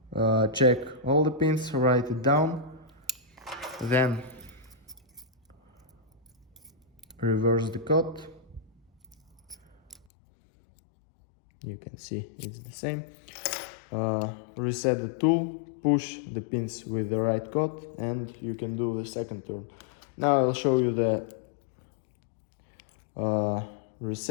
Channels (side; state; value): right; drops out; at 10.1 s